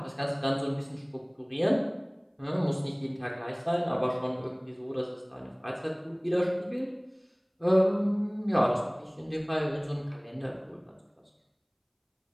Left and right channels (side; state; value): both; identical; correlation 1.00